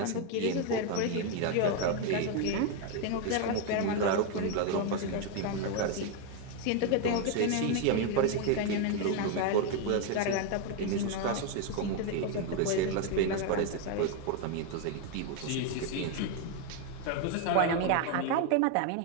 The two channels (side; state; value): both; different; correlation 0.01